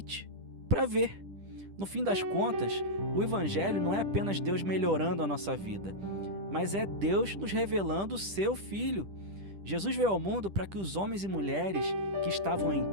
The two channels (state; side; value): late; left; 10 ms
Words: para ver. No fim das contas, o Evangelho não é apenas Deus melhorando a nossa vida, mas é Deus nos revelando o seu Filho. Jesus veio ao mundo para que os homens e mulheres que estavam em